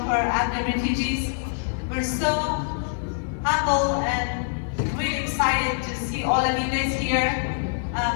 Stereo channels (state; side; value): silent; right; 62 dB below the other